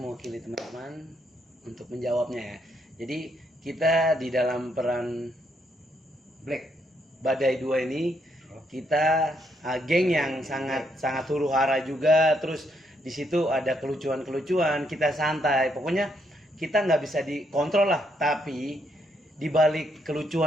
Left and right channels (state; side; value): normal; both; correlation 0.75